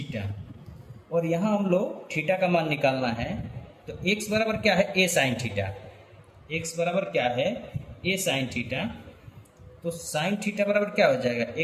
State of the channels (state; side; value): identical; both; correlation 1.00